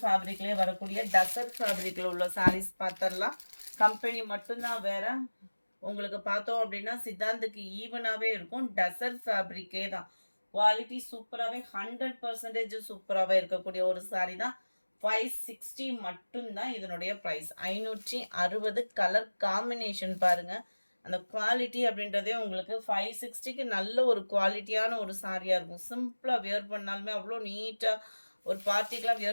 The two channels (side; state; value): both; inverted; correlation -1.00